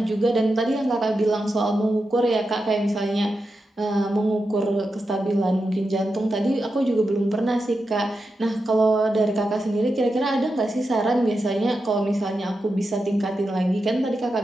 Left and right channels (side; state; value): both; normal; correlation 0.89